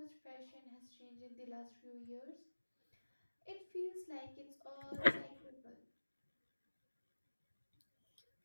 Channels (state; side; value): inverted; both; correlation -1.00